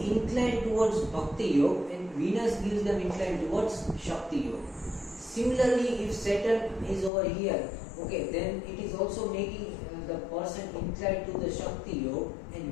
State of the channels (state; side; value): drops out; right; at 7.1 s